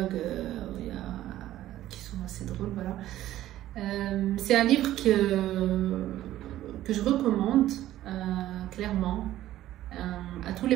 qui sont assez drôles. Voilà. C'est un livre que je recommande clairement à tous les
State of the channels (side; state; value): left; quieter; 13.8 dB